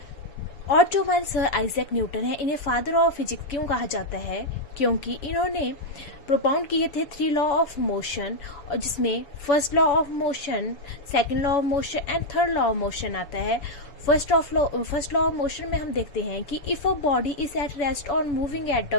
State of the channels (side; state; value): right; late; 7.0 ms